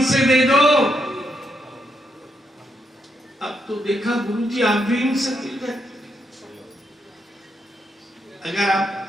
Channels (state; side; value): normal; both; correlation 0.79